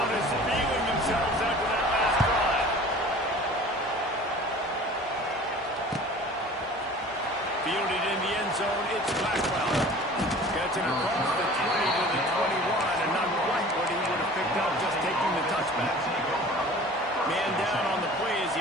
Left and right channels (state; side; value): normal; both; correlation 0.44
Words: is feeling themselves after that last drive. Fielded in the end zone, it's Blackwell. Gets it across the 20 to the 21, and not quite what he would have picked up just taking the touchback. Man down on the play as